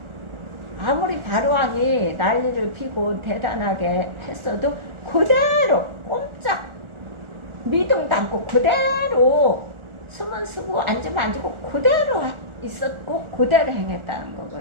아무리 바로왕이 난리를 피고 대단하게 했어도 그대로 꼼짝 미동도 않고 그대로 숨은 쓰고 앉으면 앉고 그대로 있었고 그대로 행했다는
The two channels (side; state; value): left; late; 1.4 ms